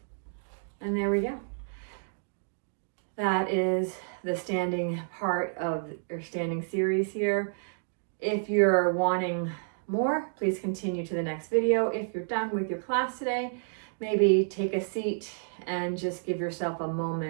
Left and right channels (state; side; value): silent; left; digital silence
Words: And there we go. That is the standing part of our standing series here. If you're wanting more, please continue to the next video. If you're done with your class today, maybe take a seat and just give yourself a